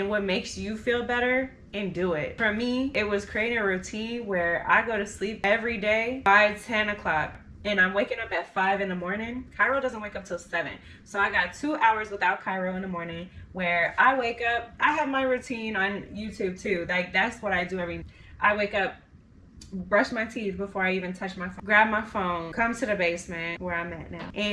what makes you feel better, and do it. For me, it was creating a routine where I go to sleep every day by 10 o'clock. And I'm waking up at 5 in the morning. Kairo doesn't wake up till 7. So I got 2 hours without Kairo in the morning where I wake up. I have my routine on YouTube too. Like, that's what I do I wake up, brush my teeth before I even touch my phone, grab my phone, come to the basement where I'm at now,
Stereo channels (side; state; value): both; identical; correlation 1.00